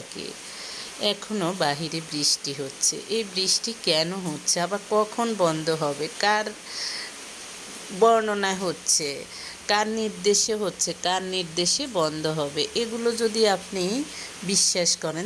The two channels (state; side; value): identical; both; correlation 1.00